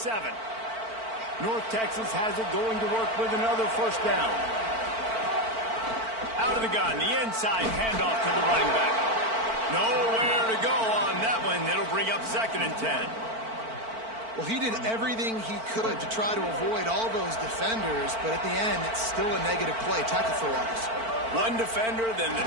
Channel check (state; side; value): late; left; 4.5 ms